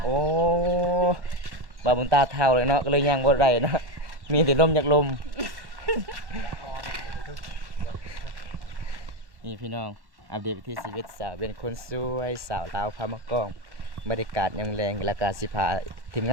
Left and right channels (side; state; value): left; late; 1.1 ms